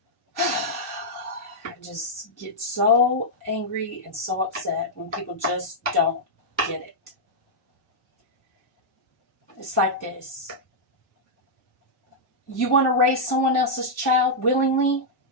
just get so angry and so upset when people just don't get it. It's like this. You want to raise someone else's child willingly?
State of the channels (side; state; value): both; normal; correlation -0.06